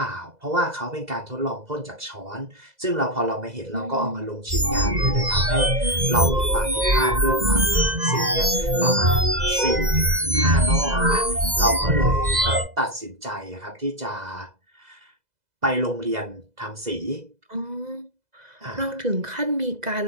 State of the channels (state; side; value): late; left; 2.0 ms